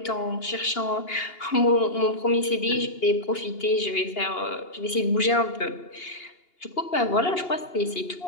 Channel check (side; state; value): right; late; 2.8 ms